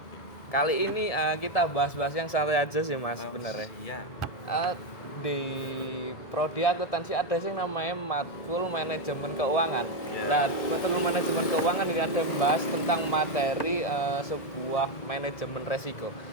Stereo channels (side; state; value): right; late; 1.9 ms